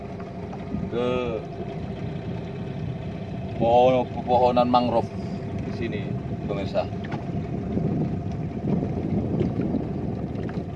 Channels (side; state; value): both; identical; correlation 1.00